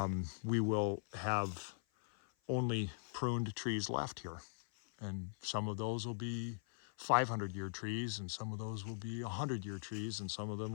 we will have only pruned trees left here. And some of those will be 500-year trees, and some of those will be 100-year trees, and some of them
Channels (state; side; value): silent; right; 51 dB below the other